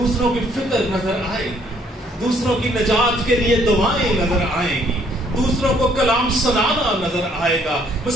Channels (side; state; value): both; normal; correlation 0.65